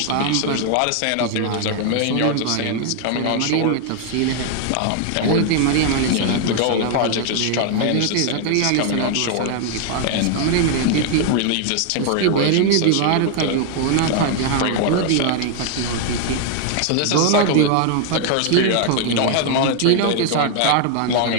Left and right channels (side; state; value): both; different; correlation 0.00